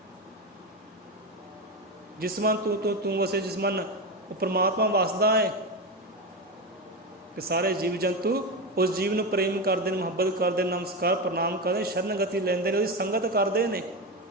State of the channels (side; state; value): both; normal; correlation 0.17